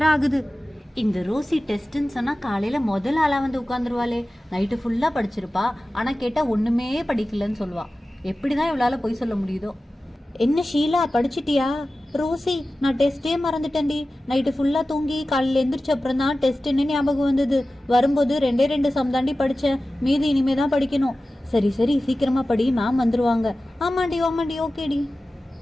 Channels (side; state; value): both; normal; correlation 0.95